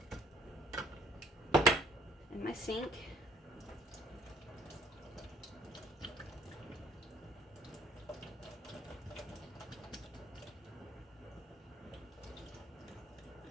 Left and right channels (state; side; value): normal; both; correlation 0.59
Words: In my sink.